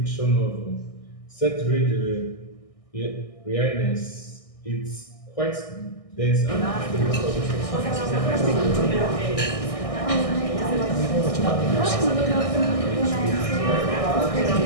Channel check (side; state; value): right; late; 1.6 ms